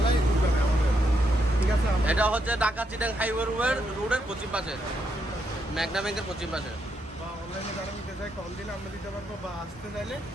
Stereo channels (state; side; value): normal; both; correlation 0.79